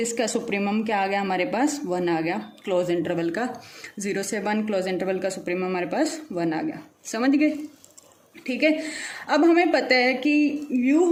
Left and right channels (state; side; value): identical; both; correlation 1.00